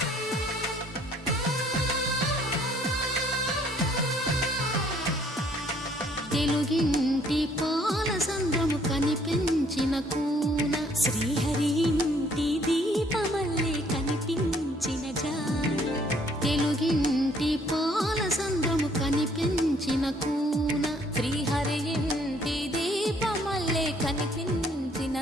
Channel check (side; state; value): both; normal; correlation 0.63